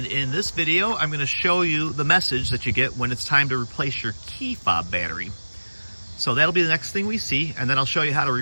in this video I'm going to show you the message that you get when it's time to replace your key fob battery. So that'll be the next thing we see, and then I'll show you how to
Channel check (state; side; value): inverted; both; correlation -1.00